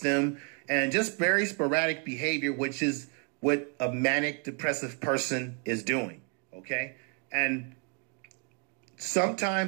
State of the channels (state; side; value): quieter; left; 36.9 dB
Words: and just very sporadic behavior, which is what a manic depressive person is doing. Okay, and